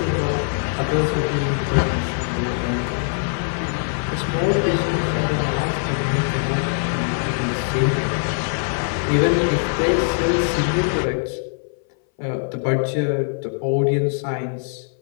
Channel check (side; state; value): right; silent; 59 dB below the other